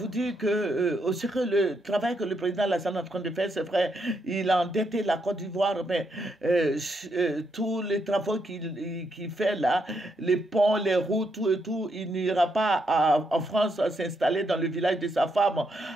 dire que aussi que le travail que le président Alassane est en train de faire, c'est vrai, il a endetté la Côte d'Ivoire, mais tous les travaux qu'il fait là, les ponts, les routes, tout et tout, il n'ira pas en France s'installer dans le village de sa femme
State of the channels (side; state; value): both; normal; correlation 0.78